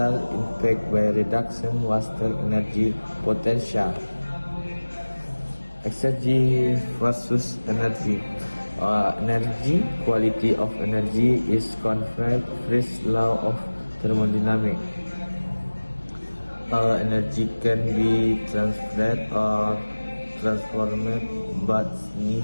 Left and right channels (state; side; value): inverted; both; correlation -1.00